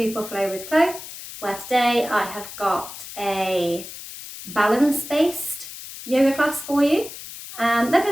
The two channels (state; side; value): noise; left; hiss, 12 dB below the sound